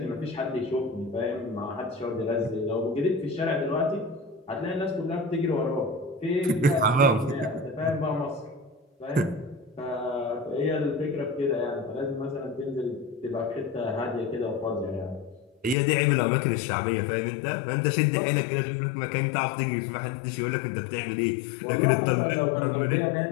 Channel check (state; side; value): drops out; right; at 15.8 s